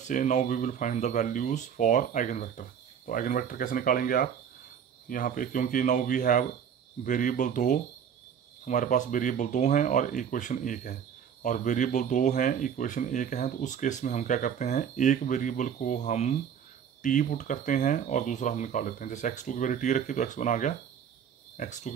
now we will find the values for eigen vector. तो आइगन वेक्टर कैसे निकालेंगे आप यहाँ पे, क्योंकि नाउ वी हैव वेरिएबल 2, हमारे पास वेरिएबल 2 हैं और इक्वेशन 1 है, और वेरिएबल 2 हैं इक्वेशन 1 है, तो उस केस में हम क्या करते हैं, एक वेरिएबल को हम t पुट करते हैं और दूसरा हम निकाल लेते हैं। जैसे x2 की वैल्यू t रखी तो x1 आ गया, x2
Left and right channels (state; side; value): quieter; left; 8.1 dB